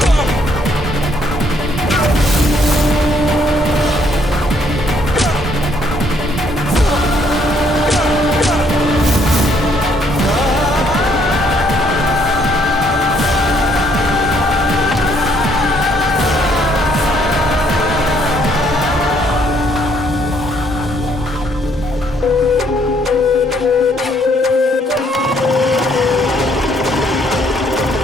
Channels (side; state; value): both; normal; correlation 0.67